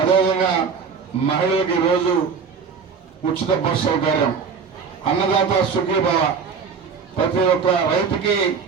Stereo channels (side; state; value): left; quieter; 5.7 dB